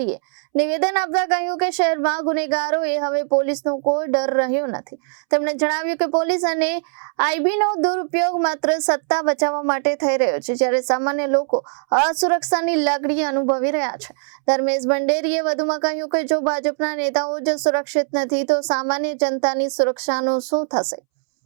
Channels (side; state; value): left; silent; 65 dB below the other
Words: નિવેદન આપતા કહ્યું કે શહેરમાં ગુનેગારોએ હવે પોલીસનો કોઈ ડર રહ્યો નથી। તેમણે જણાવ્યું કે પોલીસ અને આઈબીનો દુરુપયોગ માત્ર સત્તા બચાવવા માટે થઈ રહ્યો છે, જ્યારે સામાન્ય લોકો અસુરક્ષાની લાગણી અનુભવી રહ્યા છે। ધર્મેશ ભંડેરીએ વધુમાં કહ્યું કે જો ભાજપના નેતાઓ જ સુરક્ષિત નથી તો સામાન્ય જનતાની સુરક્ષાનું શું થશે।